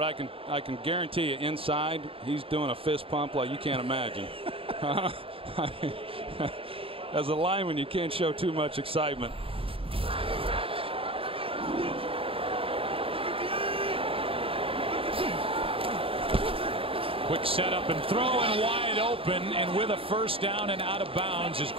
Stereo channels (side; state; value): left; late; 0.27 ms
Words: I can guarantee you inside he's doing a fist pump like you can't imagine. As a lineman, you can't show too much excitement. Quick setup and throw, and wide open, and with a 1st down and out of bounds is